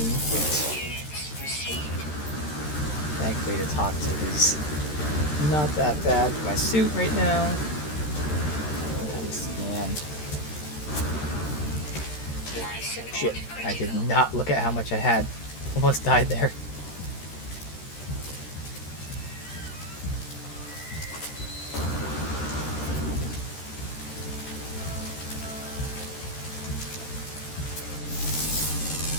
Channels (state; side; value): late; right; 13 ms